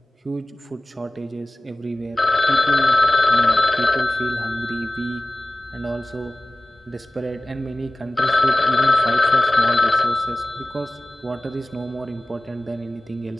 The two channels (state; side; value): normal; both; correlation 0.98